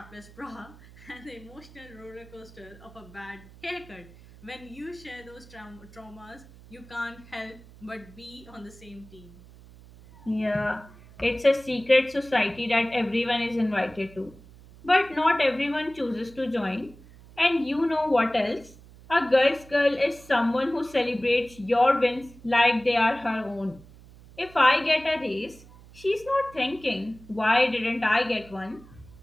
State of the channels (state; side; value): noise; right; hum, 21 dB below the sound